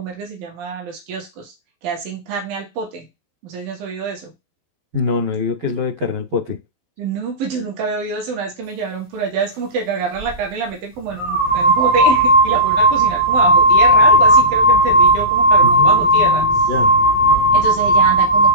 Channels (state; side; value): late; left; 12 ms